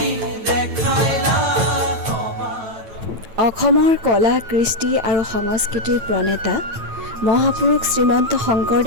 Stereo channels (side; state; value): left; late; 9.0 ms